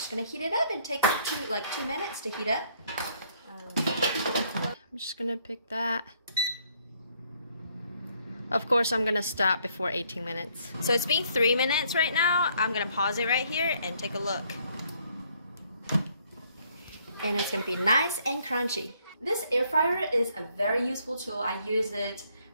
gonna heat it up and take like 2 minutes to heat up. I'm just gonna pick that. Of course, I'm gonna stop before 18 minutes. So it's been 3 minutes right now. I'm gonna pause it right here and take a look. And it's gonna be nice and crunchy. This air fryer is a very useful tool. I use it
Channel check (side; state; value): both; inverted; correlation -0.67